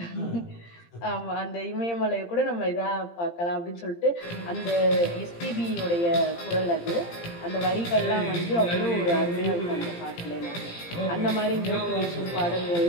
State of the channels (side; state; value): right; late; 17 ms